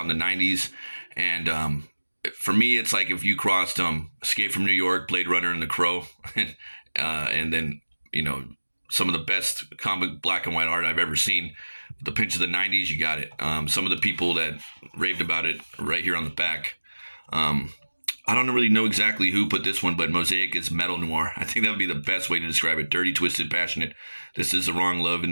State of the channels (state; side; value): inverted; both; correlation -1.00